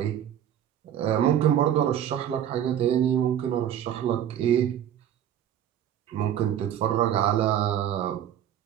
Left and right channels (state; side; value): quieter; left; 10.3 dB